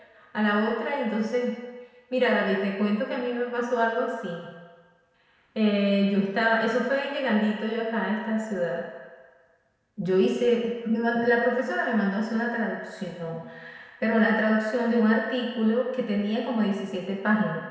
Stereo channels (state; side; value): identical; both; correlation 1.00